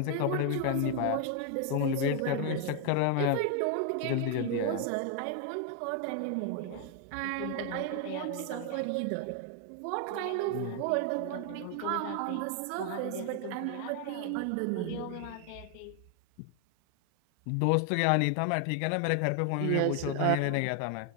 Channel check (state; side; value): different; both; correlation 0.00